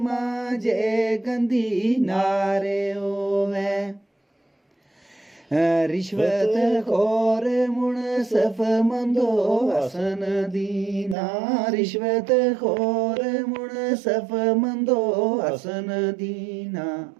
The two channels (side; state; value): left; drops out; at 11.2 s